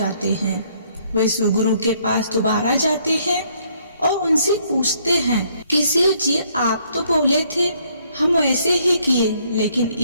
हैं। वे शिव गुरु के पास दोबारा जाते हैं और उनसे पूछते हैं कि शिव जी, आप तो बोले थे हम वैसे ही किए, लेकिन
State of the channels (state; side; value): inverted; both; correlation -0.67